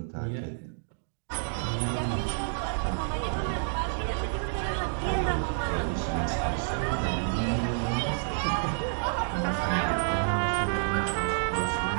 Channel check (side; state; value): left; silent; digital silence